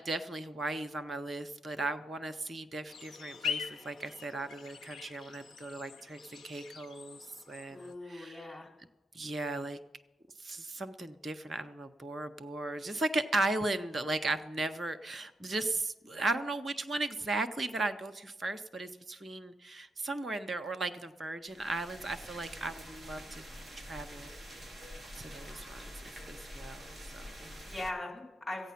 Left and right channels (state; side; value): normal; both; correlation 0.81